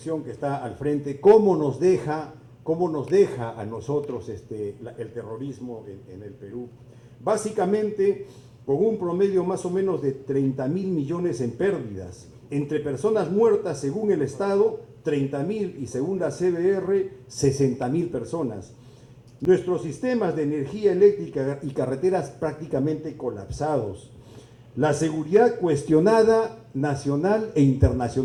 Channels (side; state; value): both; identical; correlation 1.00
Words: que está al frente, cómo nos deja a nosotros el terrorismo en el Perú. Básicamente, con un promedio más o menos de 30.000 millones en pérdidas, entre personas muertas según el Estado, 30.000 y según la CBR, 60.000 personas. Nuestros sistemas de energía eléctrica y carreteras prácticamente colapsados. La seguridad cuestionada nacional e